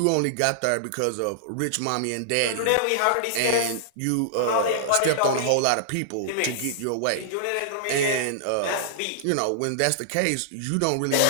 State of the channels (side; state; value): both; different; correlation -0.01